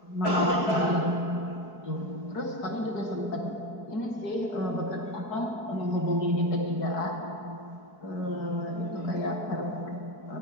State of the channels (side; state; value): right; late; 4.7 ms